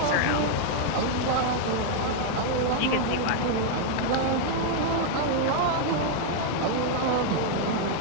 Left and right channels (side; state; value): both; different; correlation 0.00